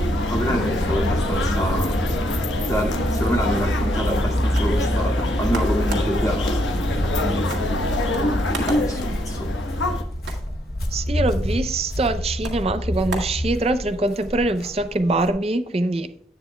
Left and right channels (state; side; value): normal; both; correlation 0.73